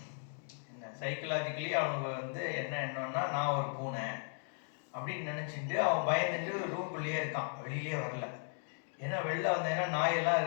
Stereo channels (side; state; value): right; silent; 54 dB below the other